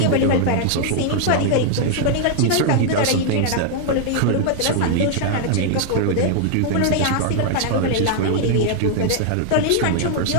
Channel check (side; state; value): both; different; correlation 0.00